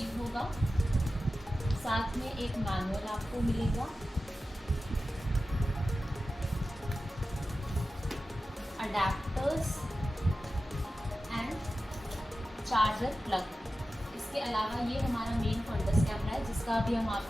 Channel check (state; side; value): normal; both; correlation 0.94